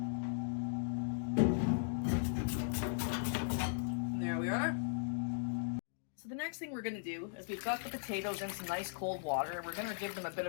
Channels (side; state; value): right; silent; digital silence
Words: And there we are. So the next thing we're going to do is we've got the potatoes in some nice cold water, and we're going to give them a bit